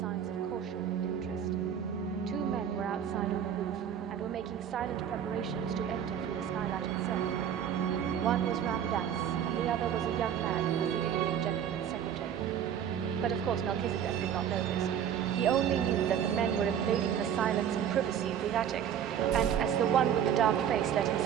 of caution and interest. Two men were outside on the roof, and were making silent preparations to enter through the skylight itself. One was Ramdas, and the other was a young man who was the Indian gentleman's secretary. But of course Melchizedek did not know this. He only knew that the men were invading the silence and privacy of the attic, and as the one with the dark face let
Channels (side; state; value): left; quieter; 9.1 dB